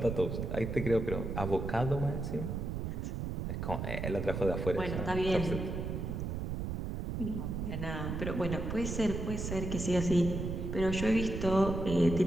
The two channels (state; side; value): noise; right; rumble, 3 dB below the sound